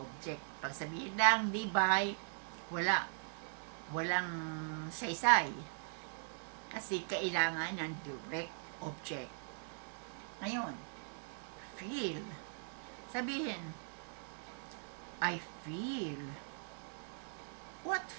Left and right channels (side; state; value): left; silent; 51 dB below the other